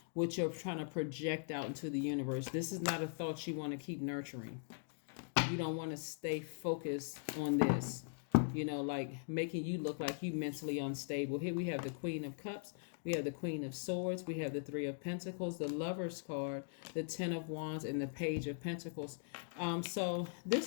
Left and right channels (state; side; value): silent; right; digital silence